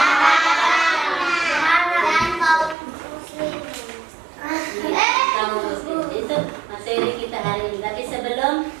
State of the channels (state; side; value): drops out; left; at 2.8 s